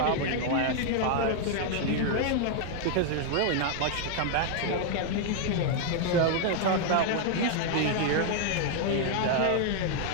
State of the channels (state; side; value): different; both; correlation 0.00